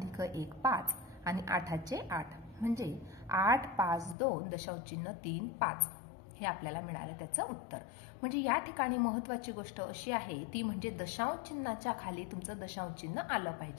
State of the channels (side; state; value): right; drops out; at 4.2 s